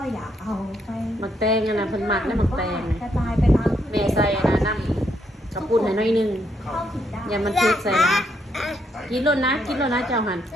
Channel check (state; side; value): normal; both; correlation 0.75